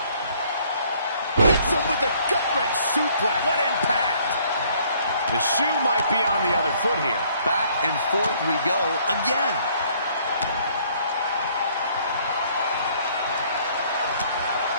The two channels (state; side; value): inverted; both; correlation -0.62